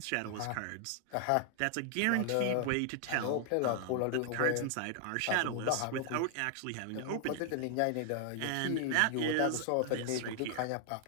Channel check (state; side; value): different; both; correlation 0.00